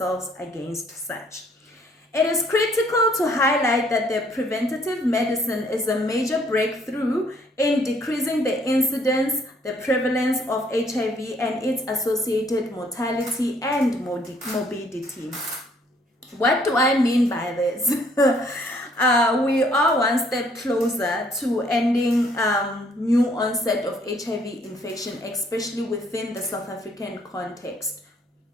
against such. It is critical to highlight that the preventative medicine is a major breakthrough in decreasing the incidence, the prevalence of HIV and its associated mortality and morbidity. What do I mean by this? We are one step closer to ending new onset of HIV infection, especially within the South African context.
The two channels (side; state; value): both; normal; correlation 0.64